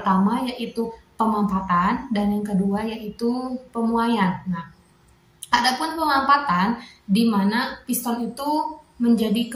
yaitu pemampatan, dan yang kedua yaitu pemuaian. Nah, adapun pemampatan di mana piston itu menjadi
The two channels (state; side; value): identical; both; correlation 1.00